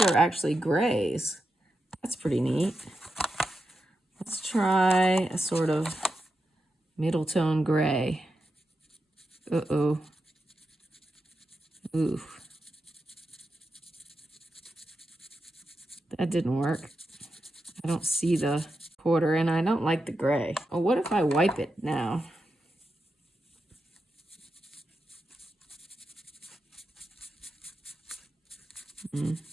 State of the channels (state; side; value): normal; both; correlation 0.88